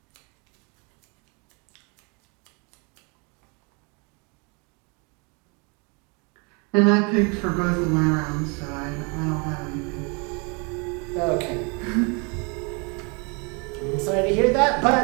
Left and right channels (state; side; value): quieter; left; 32.5 dB